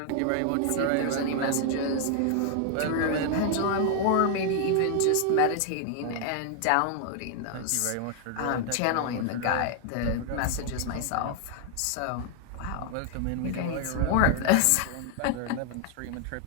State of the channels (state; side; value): different; both; correlation 0.00